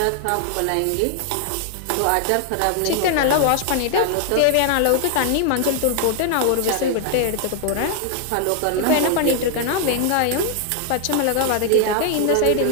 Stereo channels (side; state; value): both; different; correlation 0.00